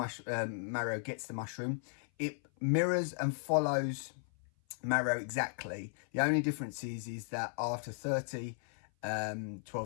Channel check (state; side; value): silent; right; 54 dB below the other